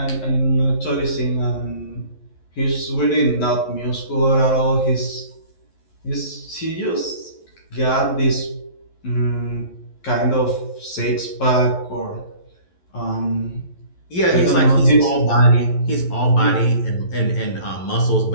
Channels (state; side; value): late; right; 11 ms